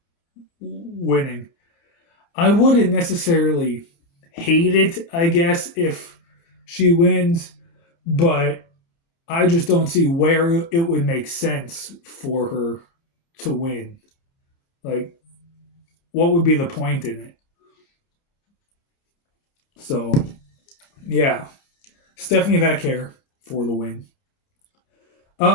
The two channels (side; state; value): right; late; 30 ms